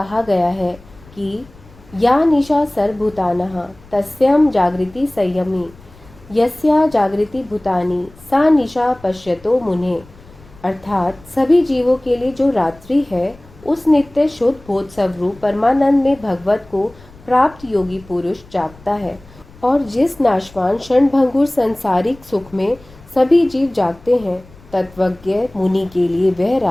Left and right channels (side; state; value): left; noise; rumble, 24 dB below the sound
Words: गया है कि या निशा सर्वभूतानः तस्यां जागृति संयमी, यस्या जागृति भूतानि सा निशा पश्यतो मुने। अर्थात सभी जीवों के लिए जो रात्रि है, उस नित्य शुद्ध बोध स्वरूप परमानंद में भगवत को प्राप्त योगी पुरुष जागता है, और जिस नाशवान क्षणभंगुर संसारिक सुख में सभी जीव जागते हैं, तत्वज्ञ मुनि के लिए वह